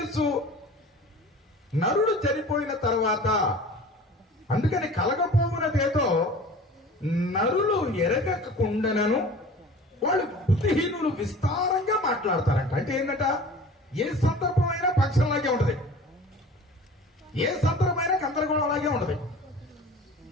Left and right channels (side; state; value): both; normal; correlation 0.42